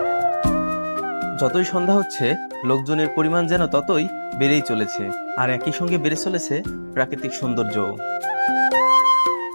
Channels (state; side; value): inverted; both; correlation -1.00